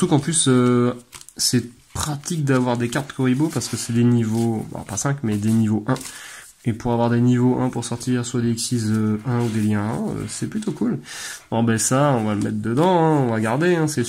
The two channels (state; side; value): identical; both; correlation 1.00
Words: qu'en plus, c'est pratique d'avoir des cartes Kuribo parce que c'est des niveaux, bon, pas 5, mais des niveaux 1. Et pour avoir des niveaux 1 pour sortir soit des Xyz 1 ou des liens 1, c'est plutôt cool. Bon, ben ça, on va le mettre dedans, hein, on va garder, hein, c'est